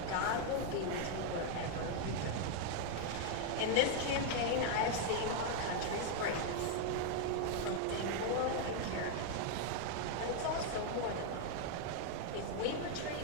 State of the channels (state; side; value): different; both; correlation 0.00